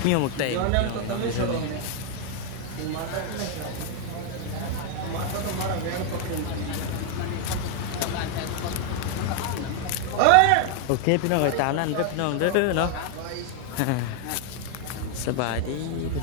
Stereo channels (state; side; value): different; both; correlation 0.00